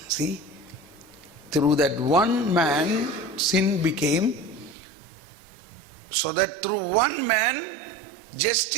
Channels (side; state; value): left; drops out; at 4.8 s